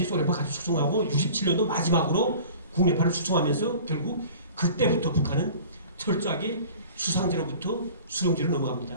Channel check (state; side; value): inverted; both; correlation -0.43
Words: 소련파 같이 숙청하고 67년도 마지막으로 국내파를 숙청하면서 결국 그때부터 북한은 철저하게 수상제로부터 수령제로